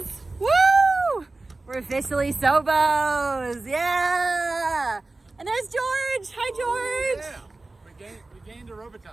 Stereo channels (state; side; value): quieter; left; 3.2 dB